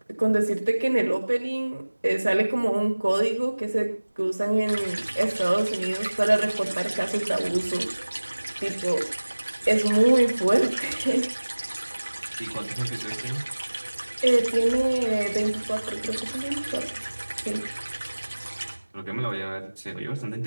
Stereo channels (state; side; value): inverted; both; correlation -1.00